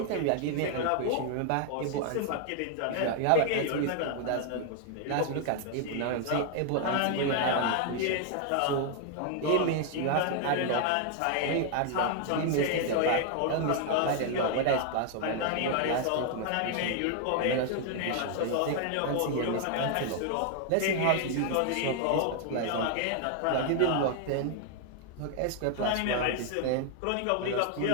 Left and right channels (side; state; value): both; different; correlation 0.00